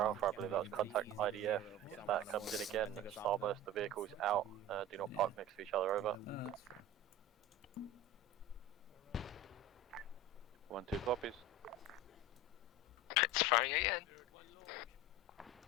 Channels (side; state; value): both; normal; correlation 0.32